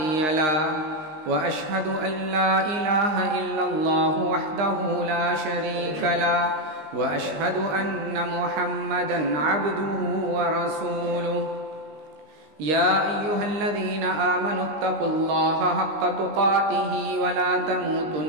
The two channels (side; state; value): left; late; 19 ms